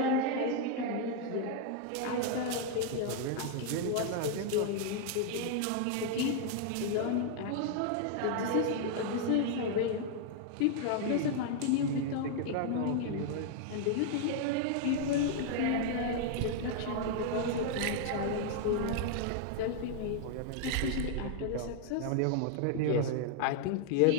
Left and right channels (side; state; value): both; different; correlation 0.00